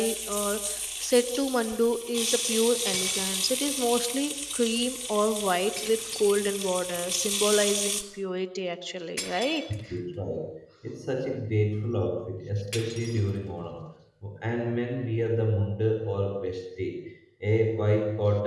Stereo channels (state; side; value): identical; both; correlation 1.00